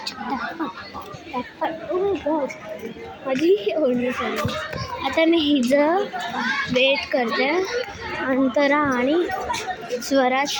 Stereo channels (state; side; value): identical; both; correlation 1.00